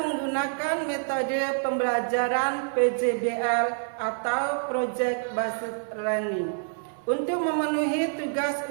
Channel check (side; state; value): left; silent; 56 dB below the other